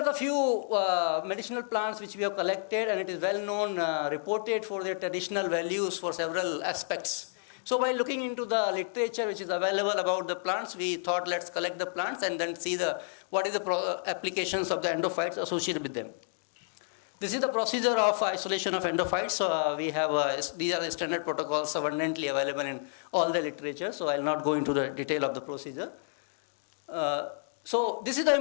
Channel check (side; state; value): right; silent; digital silence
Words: the few medicinal plants which we have collected, and it is well known, reported for their traditional values for several aspects. So by looking into the literature which is available about the plants, we thought let's collect the plants and then see what is the applications of the endophytes associated with them. This is the procedure of isolation of endophytes. So we have these are the standard protocols abundantly available in all the literature. So I'll not go into the detail of the procedure. So this is the